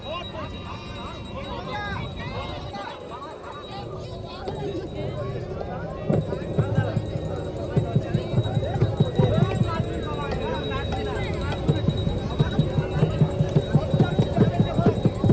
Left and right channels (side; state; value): both; identical; correlation 1.00